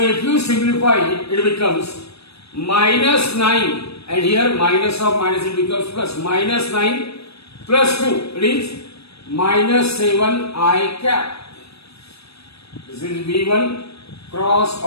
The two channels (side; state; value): right; late; 0.78 ms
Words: you simplify it, it becomes minus 9 and here minus of minus it becomes plus. Minus 9 plus 2, it is minus 7 I cap. This is V1 cross